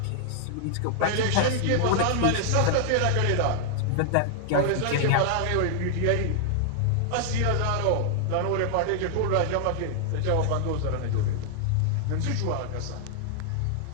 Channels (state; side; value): different; both; correlation -0.01